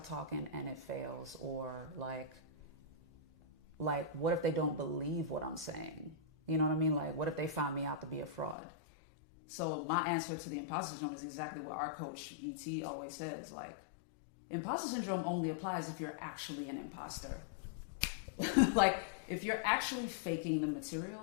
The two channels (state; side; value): drops out; right; at 8.6 s